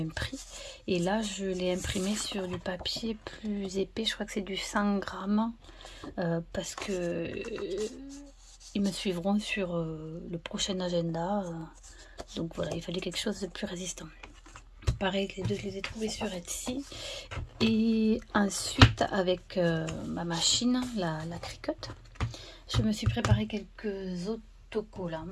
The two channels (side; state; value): both; identical; correlation 1.00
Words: prix. Et là je l'ai imprimé sur du papier plus épais, je crois que c'est du 100 grammes, parce que ils me suivront sur le prochain agenda, donc voilà, il fallait quelque chose de plus résistant. Pareil, les deux je les ai trouvés sur Etsy. Et ensuite avec ma machine, la Cricut, je me suis préparé quelques autocollants.